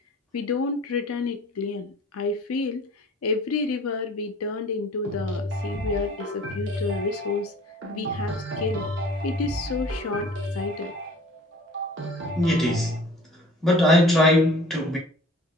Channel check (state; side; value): normal; both; correlation 0.47